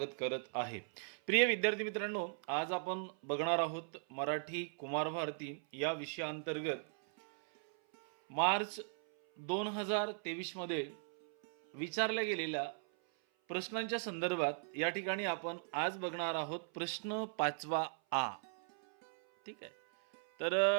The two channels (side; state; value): left; silent; 52 dB below the other